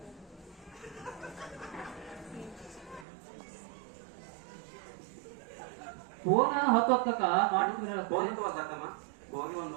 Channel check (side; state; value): left; drops out; at 3.1 s